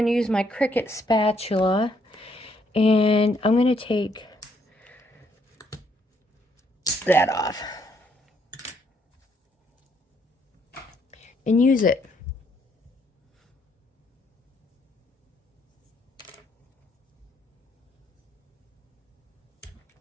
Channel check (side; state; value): both; normal; correlation 0.71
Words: use my Cricut spatula, and I'm gonna take that off and use it.